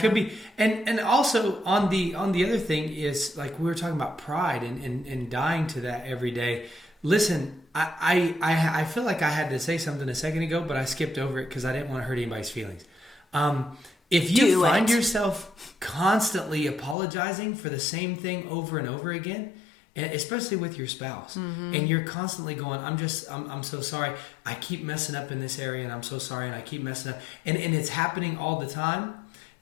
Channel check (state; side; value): drops out; right; at 16.9 s